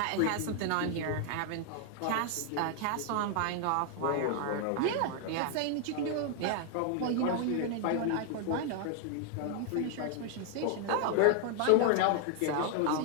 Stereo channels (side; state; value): both; different; correlation 0.00